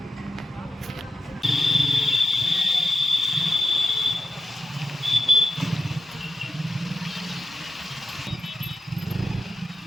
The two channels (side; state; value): both; normal; correlation 0.91